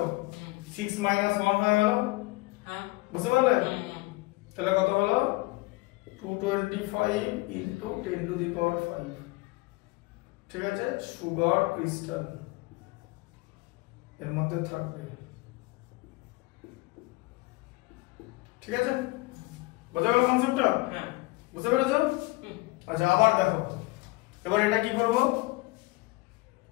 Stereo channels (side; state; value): right; quieter; 23.0 dB